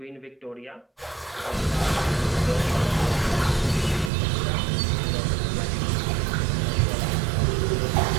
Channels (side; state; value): left; drops out; at 4.1 s